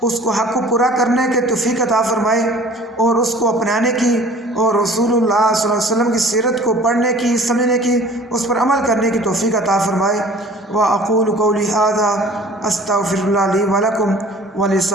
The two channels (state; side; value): normal; both; correlation 0.47